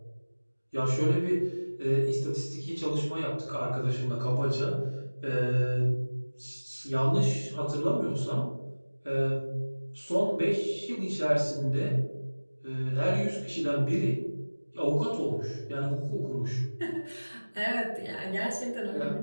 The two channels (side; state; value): both; inverted; correlation -1.00